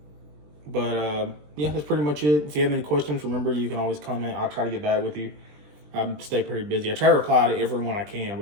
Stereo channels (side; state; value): left; late; 20 ms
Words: that's pretty much it. If you have any questions, remember, you can always comment. I'll try to get back with you. I stay pretty busy. I try to reply to everyone I can,